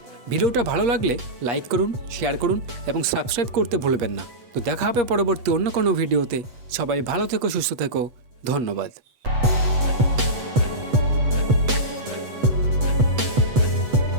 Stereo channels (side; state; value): left; late; 8.1 ms